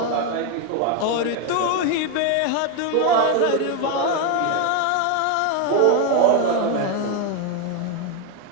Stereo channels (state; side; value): different; both; correlation 0.01